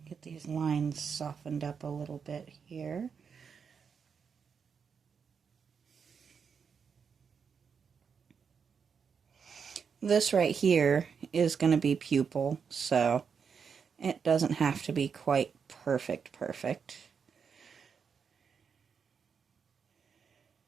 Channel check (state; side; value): quieter; left; 6.3 dB